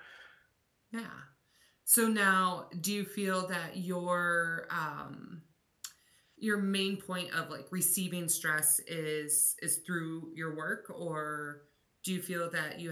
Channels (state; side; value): identical; both; correlation 1.00